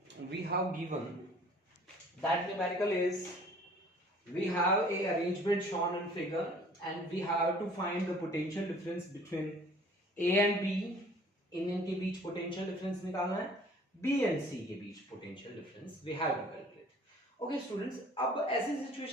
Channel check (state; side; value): normal; both; correlation 0.52